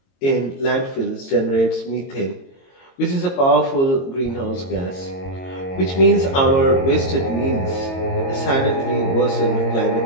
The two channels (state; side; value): late; right; 22 ms